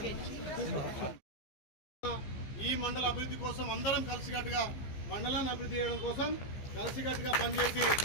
ఈ మండల అభివృద్ధి కోసం అందరం కలిసికట్టుగా మండలాన్ని అభివృద్ధి చేయడం కోసం కలిసికట్టుగా పనిచేసి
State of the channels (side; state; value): right; late; 15 ms